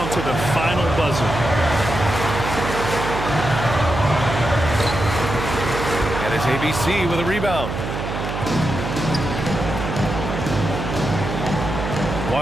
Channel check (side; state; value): right; noise; hum, 5 dB below the sound